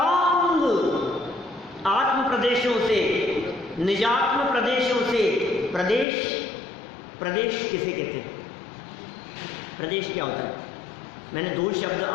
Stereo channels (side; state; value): right; drops out; at 6.1 s